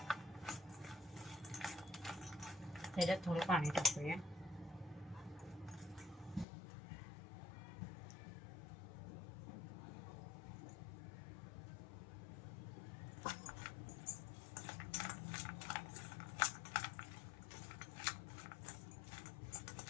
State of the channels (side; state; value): right; drops out; at 6.5 s